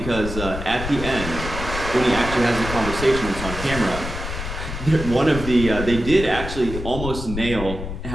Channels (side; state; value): left; noise; rumble, 7 dB below the sound